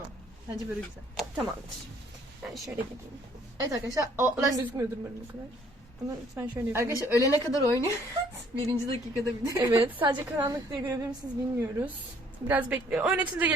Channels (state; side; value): normal; both; correlation 0.61